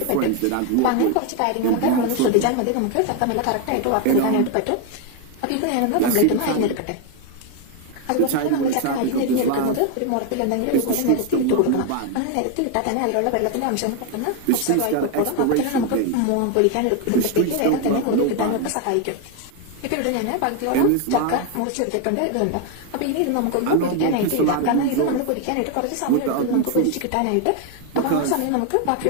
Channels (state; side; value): different; both; correlation 0.01